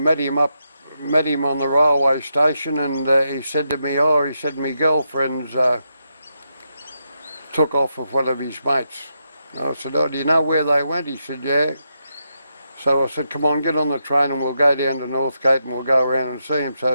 him on the railway station, and he said to me, my girlfriend's took off with one of his mates. I said, do you know where they went? He said, yeah. So I said, come on, get on the train and we'll go down to Northgate and we'll go around and see him.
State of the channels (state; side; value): inverted; both; correlation -0.84